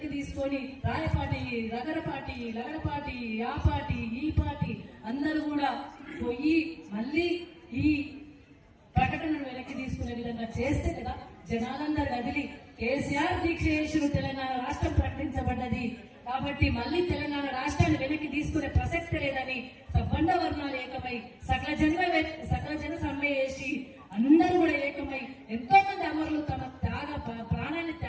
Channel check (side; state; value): both; identical; correlation 1.00